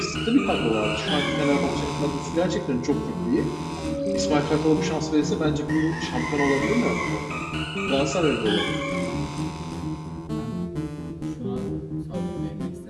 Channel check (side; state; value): both; identical; correlation 1.00